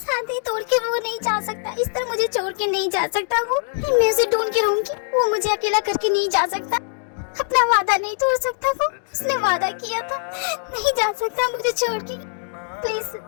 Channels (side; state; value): right; silent; digital silence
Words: तोड़ के वो नहीं जा सकता, इस तरह मुझे छोड़ के नहीं जा सकता। वो मैं उसे ढूंढ के रहूंगी, वो मुझे अकेला करके नहीं जा सकता। अपना वादा नहीं तोड़ सकता वो, उसने वादा किया था। नहीं जा सकता मुझे छोड़ के। प्लीज